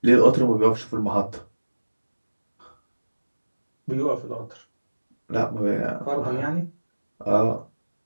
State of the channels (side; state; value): both; inverted; correlation -1.00